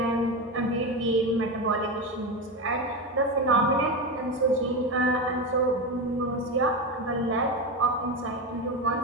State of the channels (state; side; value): normal; both; correlation 0.17